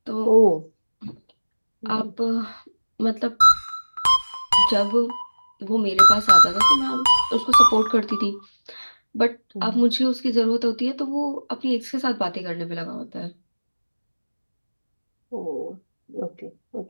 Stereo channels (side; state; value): both; inverted; correlation -1.00